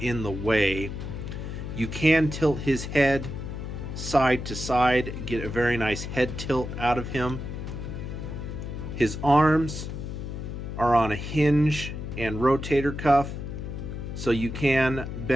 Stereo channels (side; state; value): left; noise; hum, 6 dB below the sound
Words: in the way. You can tilt his head side to side, get a very nice head tilt out of him. His arms are on a hinge and rotator cuff, so you can